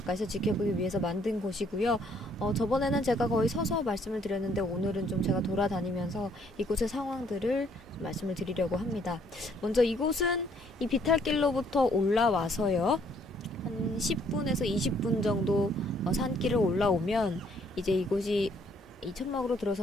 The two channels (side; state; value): both; normal; correlation 0.65